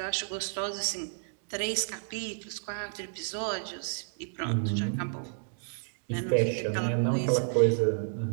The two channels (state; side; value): silent; left; digital silence